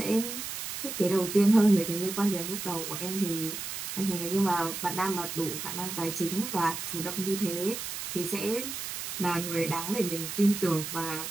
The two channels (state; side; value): noise; right; hiss, 6 dB below the sound